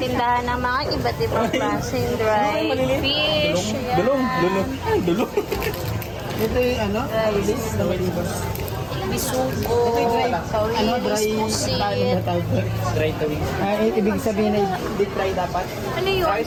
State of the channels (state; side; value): identical; both; correlation 1.00